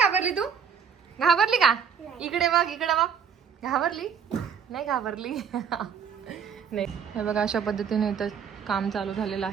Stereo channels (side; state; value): left; quieter; 7.1 dB